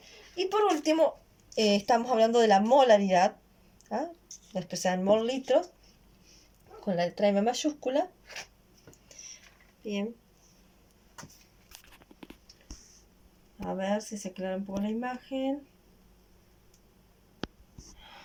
Y por último, estamos hablando de la molaridad, lo expresada en mol litros, con la letra M mayúscula. Bien. A ver si se aclara un poco la imagen.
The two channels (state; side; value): identical; both; correlation 1.00